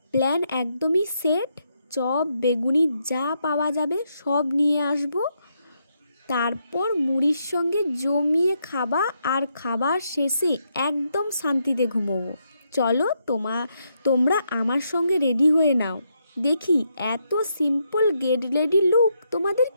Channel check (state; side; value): inverted; both; correlation -0.79